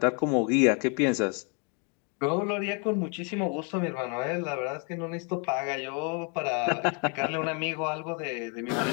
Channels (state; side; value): quieter; right; 36.0 dB